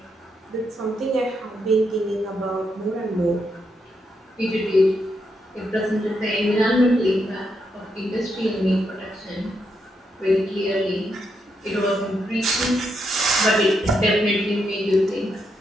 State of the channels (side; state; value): both; normal; correlation 0.81